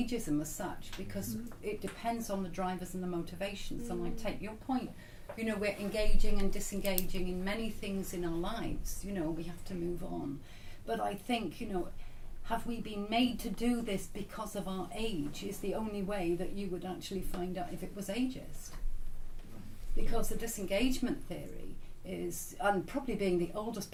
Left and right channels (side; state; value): both; identical; correlation 1.00